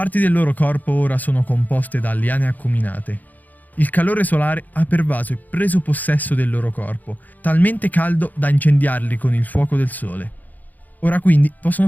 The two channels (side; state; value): right; late; 0.082 ms